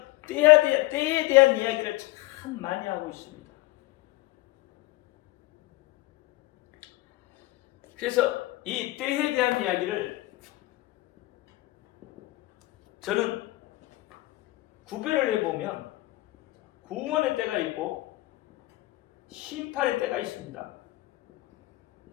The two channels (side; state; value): right; quieter; 19.5 dB